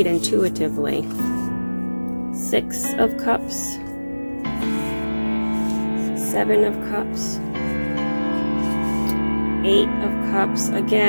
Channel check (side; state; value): both; inverted; correlation -1.00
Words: intuitively. 6 of Cups, 7 of Cups, 8 of Cups.